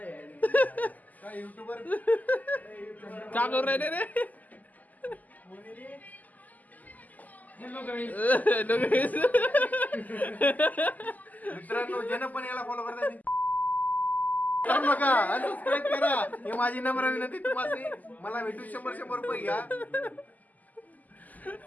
का करू राहिले रे. मित्रांनो ज्यानं पण याला फॉलो करता बघा सबस्क्राईब करा. हे माझी नम्र विनंती तुम्हाला. मला भेटून 100 रुपये घ्या.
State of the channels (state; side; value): late; right; 0.080 ms